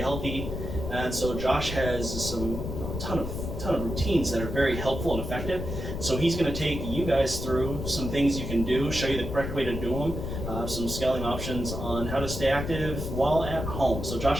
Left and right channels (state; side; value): noise; left; rumble, 5 dB below the sound